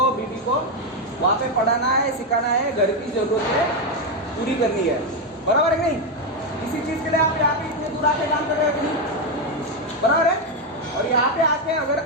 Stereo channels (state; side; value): normal; both; correlation 0.06